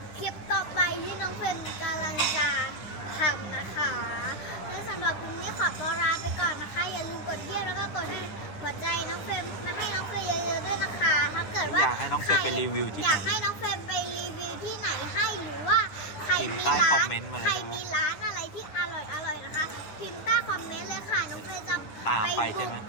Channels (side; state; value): right; late; 10 ms